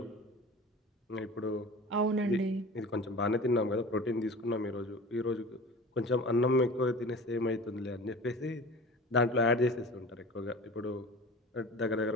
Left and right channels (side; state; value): both; normal; correlation 0.38